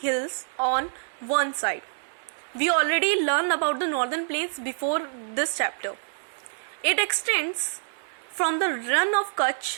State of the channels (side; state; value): left; silent; digital silence